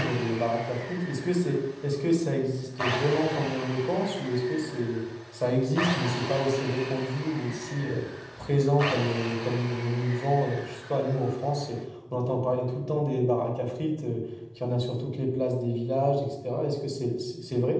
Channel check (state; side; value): identical; both; correlation 1.00